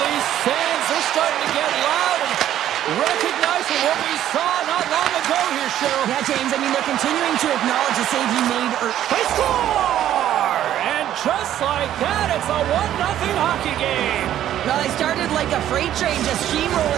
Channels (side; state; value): left; quieter; 11.7 dB